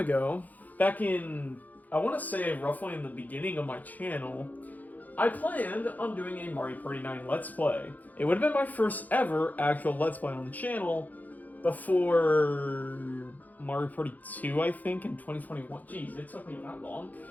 back in, I want to say roughly in the beginning of my channel, I planned on doing a Mario Party 9 Let's Play. It would have been my first ever actual Let's Play on the channel before Mario Party 2, I think, in 2021. Jeez, it took me that long.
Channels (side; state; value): right; late; 0.081 ms